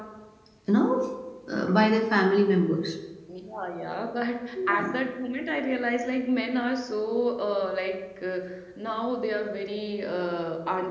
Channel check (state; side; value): identical; both; correlation 1.00